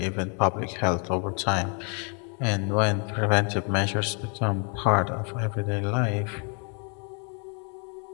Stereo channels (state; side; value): quieter; right; 37.6 dB